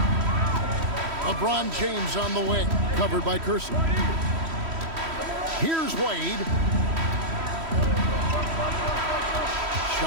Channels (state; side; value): late; left; 3.1 ms